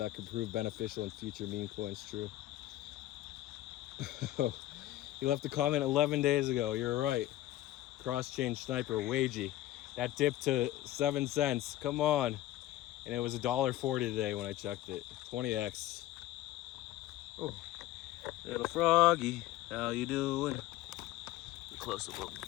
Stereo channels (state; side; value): quieter; right; 14.9 dB